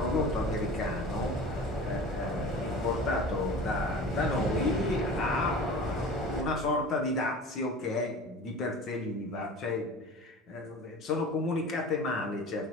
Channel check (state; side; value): normal; both; correlation 0.38